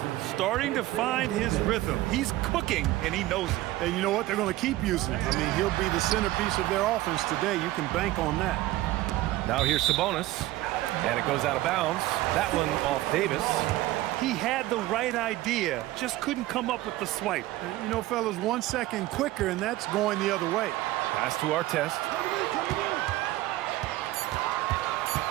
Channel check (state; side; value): quieter; left; 16.7 dB